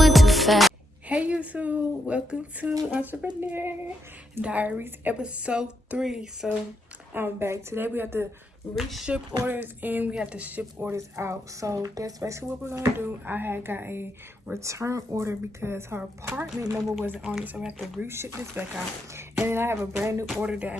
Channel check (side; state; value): both; normal; correlation 0.81